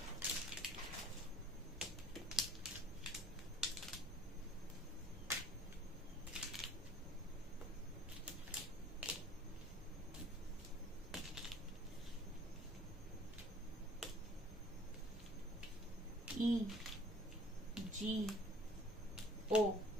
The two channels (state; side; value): normal; both; correlation 0.53